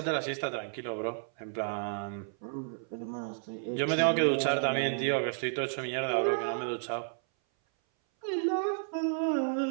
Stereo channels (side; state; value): left; silent; 57 dB below the other